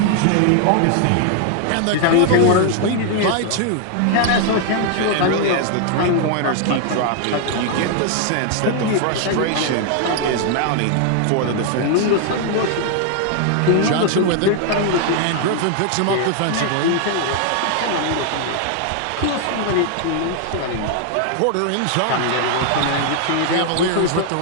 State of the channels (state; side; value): different; both; correlation 0.00